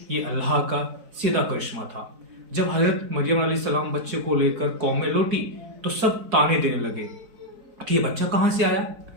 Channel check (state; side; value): late; left; 4.5 ms